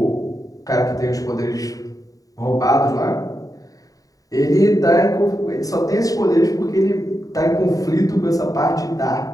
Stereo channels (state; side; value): late; right; 0.17 ms